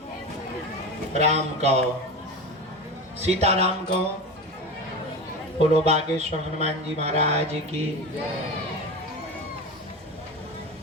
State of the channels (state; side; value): normal; both; correlation 0.26